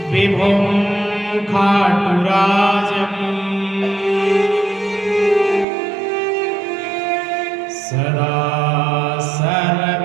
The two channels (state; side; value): drops out; left; at 5.7 s